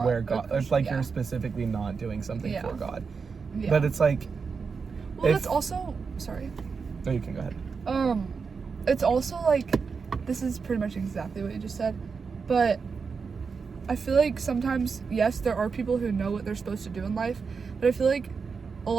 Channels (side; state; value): left; quieter; 5.3 dB